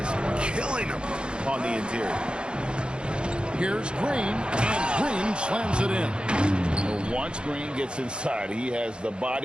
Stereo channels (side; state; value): left; late; 0.053 ms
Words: killing him on the interior. Here's Green, and Green slams it in. Well, once Green gets inside, he has the